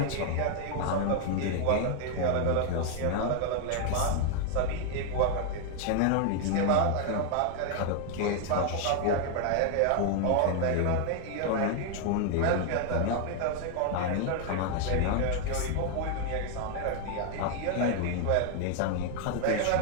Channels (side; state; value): both; different; correlation 0.00